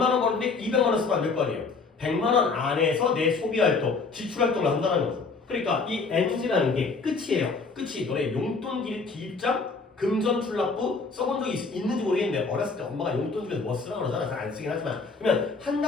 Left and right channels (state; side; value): quieter; right; 4.4 dB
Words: 원 버는데 200만 원 쓰면 안 될 거 아니에요. 100만 원 안에서 내 소비 활동, 지출 활동을 한다는 거죠. 그러니까 이 엔지라는 게 끝이에요. 끝이 너네 용돈 기입장, 금전 출납부 써본 적이 있는지 모르겠는데 어렸을 때 엄마가 용돈 주면서 뭐 쓰라고 그러잖아. 잘 안 쓰긴 하지만 그러면 한